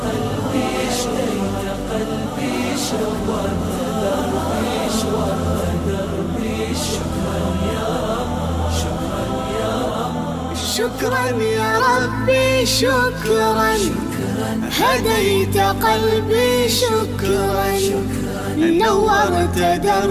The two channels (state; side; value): identical; both; correlation 1.00